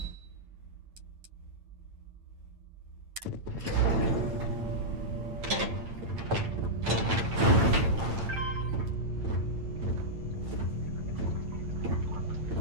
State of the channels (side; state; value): left; late; 8.9 ms